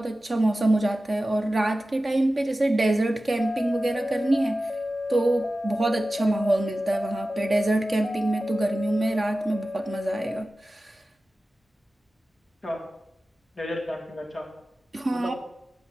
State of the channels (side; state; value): both; normal; correlation 0.95